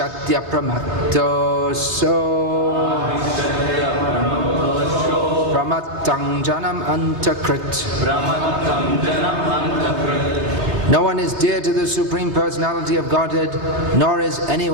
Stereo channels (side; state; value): left; late; 3.4 ms